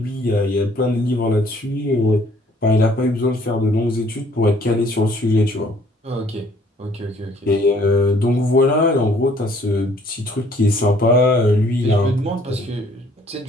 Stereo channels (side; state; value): both; normal; correlation 0.60